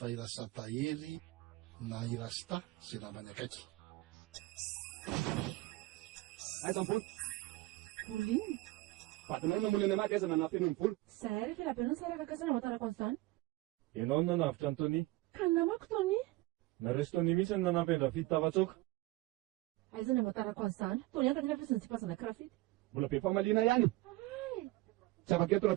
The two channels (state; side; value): quieter; left; 19.4 dB